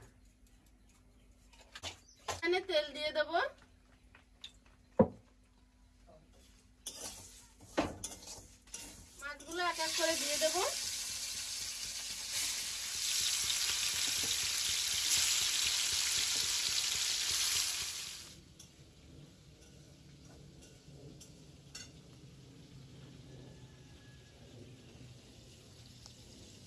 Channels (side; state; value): both; identical; correlation 1.00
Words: এখানে তেল দিয়ে দেবো। মাছগুলো এক এক করে দিয়ে দেবো।